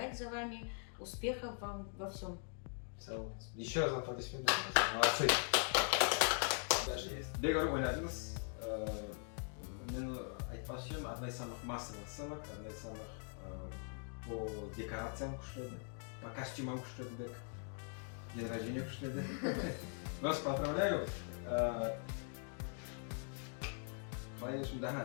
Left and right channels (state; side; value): silent; right; 50 dB below the other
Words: за вами. Успехов вам во всем. Еще раз аплодисменты. Молодцы. Дальше есть. Бегару ойнадыңыз. Мен айтпасым, одна из самых массовых сценок, одна из самых по декорациям күшті, по костюмам күшті, день рождения күшті. Вас поздравляю. Конечно, да,